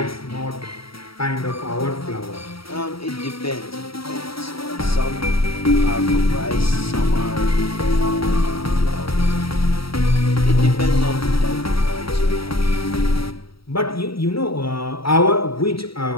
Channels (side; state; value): right; late; 0.75 ms